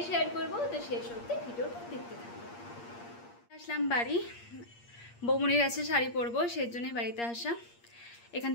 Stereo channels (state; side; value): late; right; 8.5 ms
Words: শেয়ার করবো, তো শেষ অবধি ভিডিওটা দেখতে থাকবো। আসলাম বাড়ি, বৌমনির কাছে শাড়ি পরবো, সেই জন্যই বাড়িতে আসা। এখান